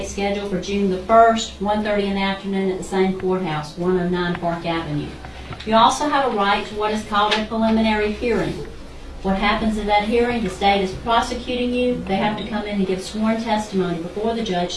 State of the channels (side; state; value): both; identical; correlation 1.00